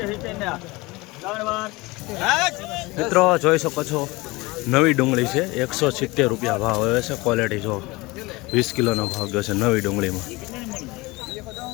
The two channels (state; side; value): quieter; right; 22.8 dB